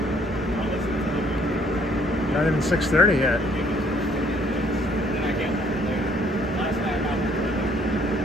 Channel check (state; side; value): normal; both; correlation 0.62